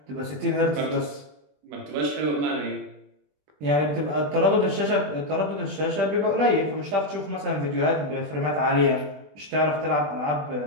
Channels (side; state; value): left; late; 20 ms